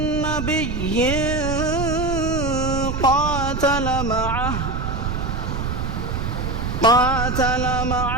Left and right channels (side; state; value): right; noise; rumble, 3 dB below the sound